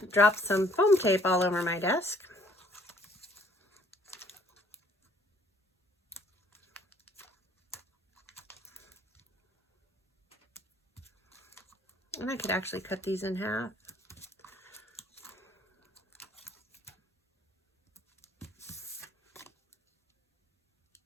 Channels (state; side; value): normal; both; correlation 0.60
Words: drop some foam tape all over my desk. And I could actually cut these in half.